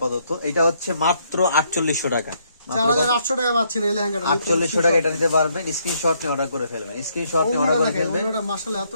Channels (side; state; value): both; inverted; correlation -0.72